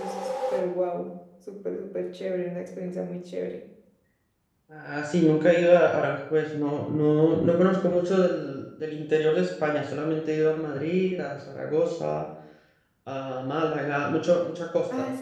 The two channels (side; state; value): both; identical; correlation 1.00